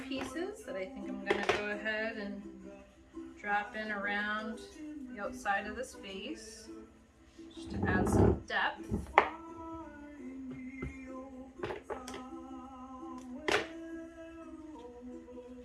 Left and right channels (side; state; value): both; identical; correlation 1.00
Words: pieces that I think I'm going to go ahead and drop in around the outside of this vase just to add some depth.